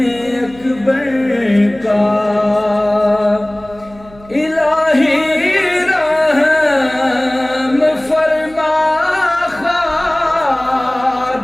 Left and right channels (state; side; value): noise; right; hum, 23 dB below the sound